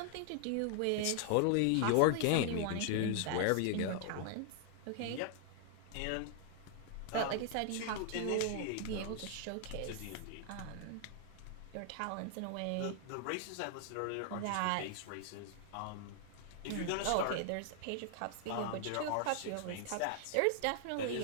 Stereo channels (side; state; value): both; different; correlation 0.00